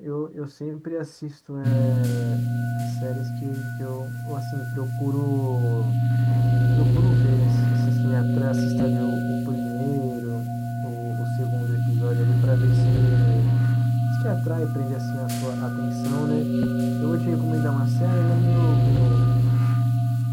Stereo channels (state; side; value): identical; both; correlation 1.00